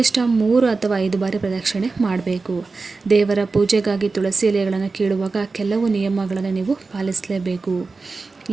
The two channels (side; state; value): left; quieter; 4.0 dB